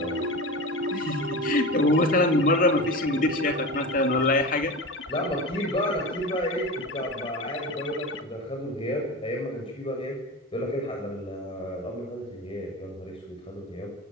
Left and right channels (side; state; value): both; normal; correlation 0.27